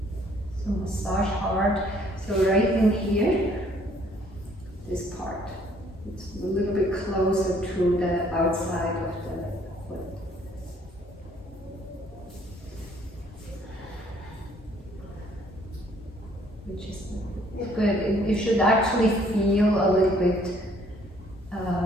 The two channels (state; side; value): normal; both; correlation 0.62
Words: So massage hard. So right in here, this part, it's a little bit closer to the outside of the foot. Which is good. You should actually feel a little bit